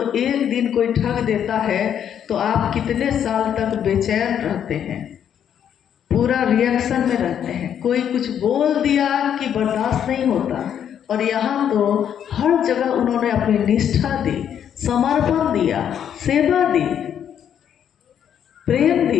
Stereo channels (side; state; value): right; quieter; 9.1 dB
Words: एक दिन कोई ठग देता है तो आप कितने साल तक बेचैन रहते हैं, पूरा रिएक्शन में रहते हैं। कोई कुछ बोल दिया कि बर्दाश्त नहीं होता, और यहाँ तो हर जगह उन्होंने अपनी निष्ठा दी, समर्पण दिया, सेवा दी, प्रेम